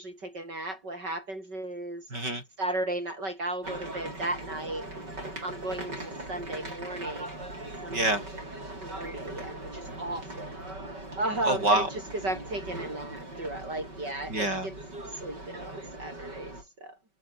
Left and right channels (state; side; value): late; left; 5.3 ms